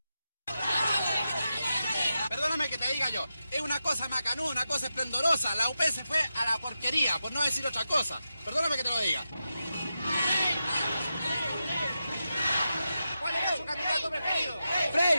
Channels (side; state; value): both; inverted; correlation -0.89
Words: Perdóname que te diga yo, es una cosa macanuda, una cosa esplendorosa. La UP se fue a la porquería, por no decir otra cosa. Perdóname que te lo diga. ¿Cuál es su candidato preferido?